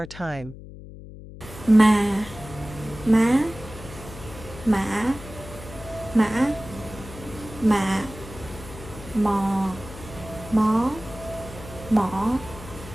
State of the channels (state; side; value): noise; left; hum, 15 dB below the sound